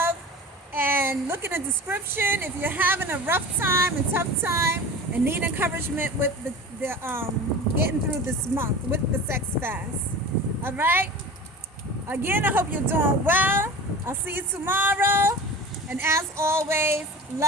And look in the description if you're having a rough time and tough time and need encouragement with the getting through this month with the sex fast. All right? Again, I hope you're doing well. I'll see you tomorrow. And as always,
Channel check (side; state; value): both; normal; correlation 0.35